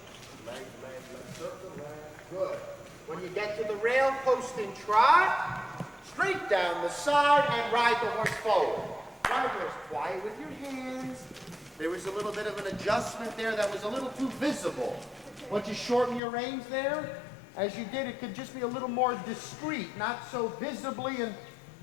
Leg. Circle, leg. Good. When you get to the rail, posting trot, straight down the side and ride the horse forward. Ride the horse quiet with your hands. There was a little bit of an adjustment there that was a little too visible. Once you shorten your reins there, as you did, it could just be a little more discreet, not so visibly, and,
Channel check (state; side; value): drops out; right; at 16.2 s